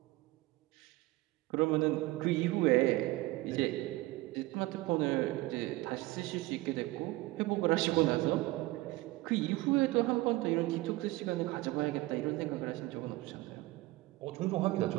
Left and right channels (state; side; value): quieter; left; 19.6 dB